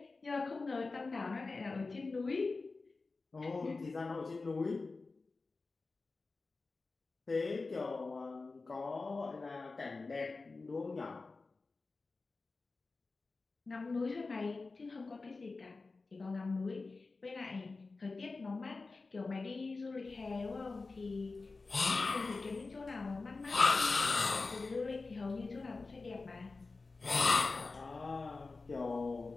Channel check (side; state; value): right; quieter; 3.8 dB